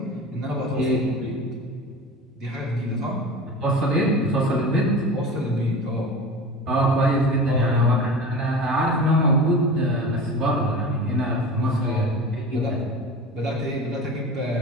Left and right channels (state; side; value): normal; both; correlation 0.33